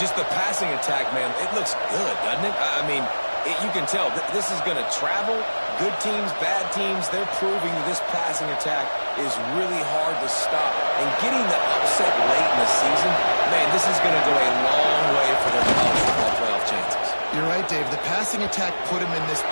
the passing attack, man, it looks good, doesn't it? I mean, you can tell this is going to travel. Good teams, bad teams, they're proving that this passing attack is really hard to stop. And getting the upset late in the season, man, this is going to go a long way for their college football playoff chances. You're right, Dave. The passing attack put them in this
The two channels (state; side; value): inverted; both; correlation -1.00